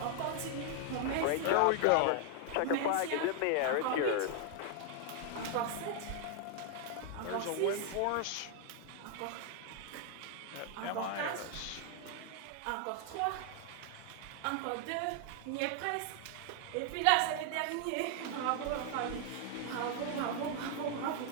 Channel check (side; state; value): both; different; correlation 0.00